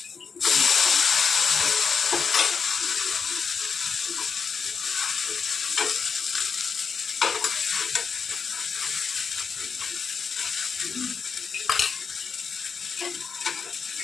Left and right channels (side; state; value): right; quieter; 5.9 dB